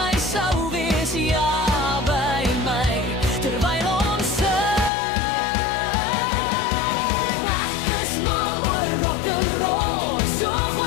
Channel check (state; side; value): drops out; right; at 4.9 s